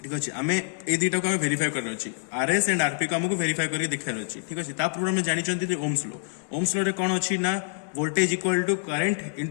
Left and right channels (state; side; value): silent; right; digital silence